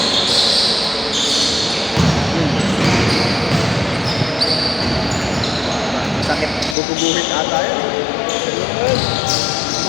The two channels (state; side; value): drops out; right; at 6.8 s